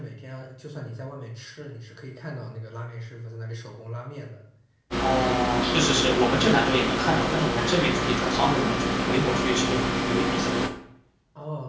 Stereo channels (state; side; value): identical; both; correlation 1.00